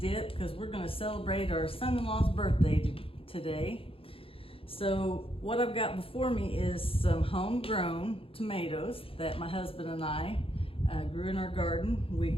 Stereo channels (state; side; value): late; right; 0.27 ms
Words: because we're going to celebrate our son-in-law's birthday today. So what I've got before me is some homegrown tomatoes that my husband and I grew in our garden. We